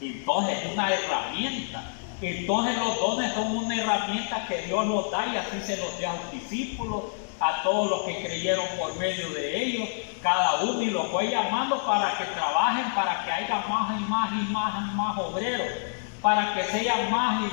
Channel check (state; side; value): silent; right; digital silence